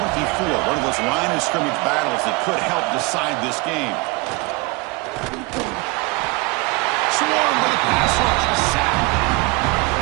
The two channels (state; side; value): quieter; left; 26.0 dB